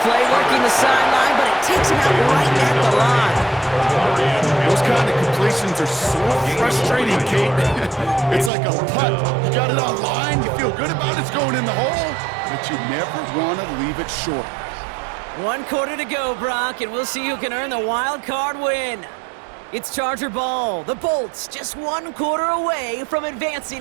play working the sideline, but it takes him out right at the line. Those kind of completions are so frustrating, Kate. It's like a putt. You got it on line, you feel good about it, it's going in the hole, but you never want to leave it short. 1 quarter to go, Brock, and we'll see who can earn the wild card win. It's Charger ball. The Bolts just 1 quarter away from advancing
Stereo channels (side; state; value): left; drops out; at 8.5 s